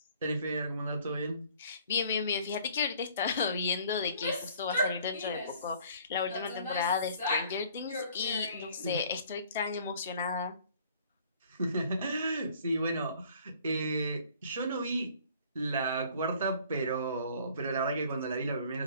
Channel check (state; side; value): inverted; both; correlation -0.55